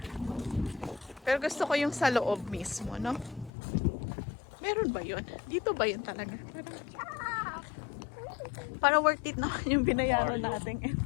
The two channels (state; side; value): drops out; right; at 3.5 s